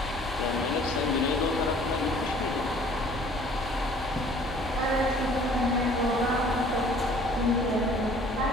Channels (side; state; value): both; normal; correlation 0.53